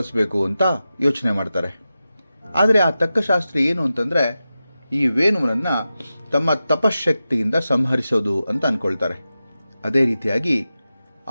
ಅಂತ ಯೋಚನೆ ಮಾಡ್ತಾರೆ. ಆದರೆ ಆ ತಕ್ಕ ಶಾಸ್ತ್ರಿ ಏನು ಅಂತಂದರೆ, ಈ ವೇಣುವನನ್ನು ತಮ್ಮ ತಪಶಕ್ತಿಯಿಂದ ಸಂಹರಿಸೋದು ಅಂತ ಅಂದ್ಕೊಳ್ತಾರೆ. ಅದೇ ರೀತಿಯಾಗಿ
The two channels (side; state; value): both; inverted; correlation -0.92